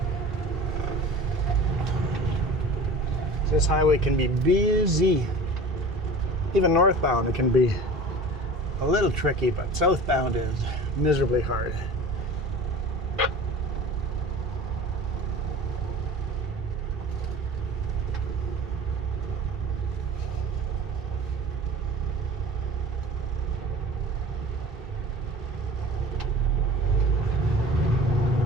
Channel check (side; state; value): both; normal; correlation 0.39